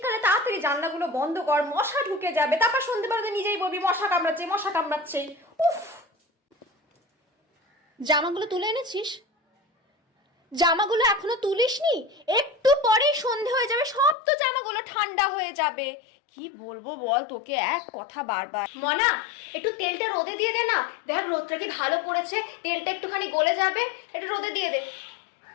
তাড়াতাড়ি জানলাগুলো বন্ধ কর, মশা ঢুকে যাবে। তারপর সন্ধ্যেবেলাতে নিজেই বলবি মশা কামড়াচ্ছে, মশা কামড়াচ্ছে। উফ। জামাগুলো তুলে এনেছিস? জামাগুলো এখনো তুলিসনি? একটু পরেই সন্ধে হয়ে যাবে, সব তো জামাগুলো ঠান্ডা হয়ে যাবে। কি বলবো বল তোকে, এক কথা বারবার। মনা, একটু তেলটা রোদে দিয়ে দে না। দেখ রোদটা কি ভালো পড়েছে, তেলটা একটুখানি গলে যাবে, একটু রোদে দিয়ে দে।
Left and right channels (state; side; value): drops out; right; at 14.2 s